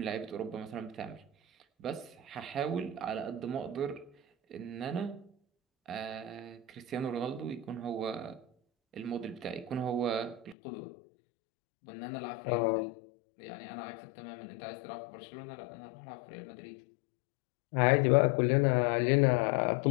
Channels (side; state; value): right; drops out; at 10.6 s